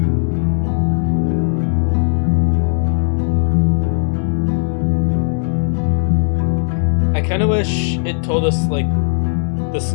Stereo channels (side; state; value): right; silent; digital silence